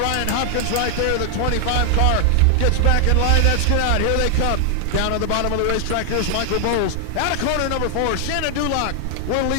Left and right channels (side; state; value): both; different; correlation 0.00